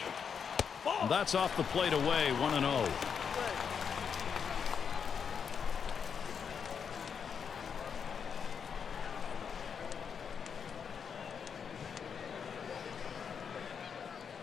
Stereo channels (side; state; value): right; quieter; 6.8 dB